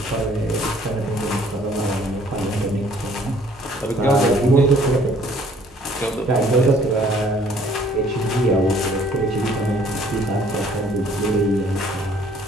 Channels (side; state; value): both; normal; correlation 0.58